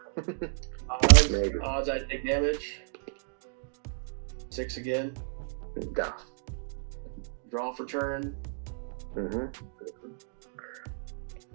Maybe. Odds I take damage. 6 again. Da. Draw for turn.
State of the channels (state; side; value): silent; left; digital silence